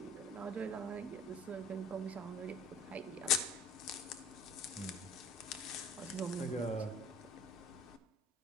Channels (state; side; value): normal; both; correlation 0.49